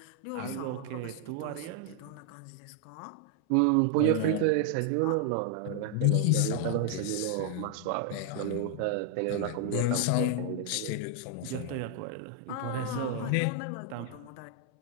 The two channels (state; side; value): different; both; correlation 0.00